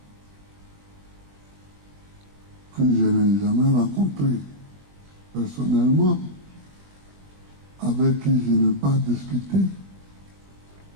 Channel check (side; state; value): left; late; 21 ms